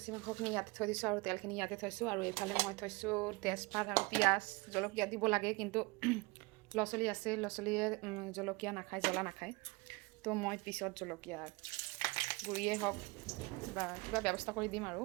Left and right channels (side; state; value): left; quieter; 25.7 dB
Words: মাংসখিনি ইয়াতে থৈ দিছোঁ আৰু তেলখিনি ইয়াতে থৈছোঁ, আৰু এইফালে মই থৈছোঁ তেজপাত আৰু পিঁয়াজ। জলকীয়া দিব লাগে, কিন্তু ল'ৰা ছোৱালী আছে, ল'ৰা ছোৱালীয়ে জলকীয়া নাখায়, জ্বলা নাখায়। তো মই পিছত জলকীয়া গুড়িয়ে হওক বা কিবা ব্যৱস্থা কৰি দিম আৰু